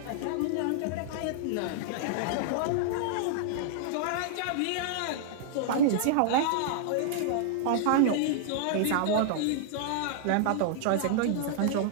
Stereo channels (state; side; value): different; both; correlation -0.01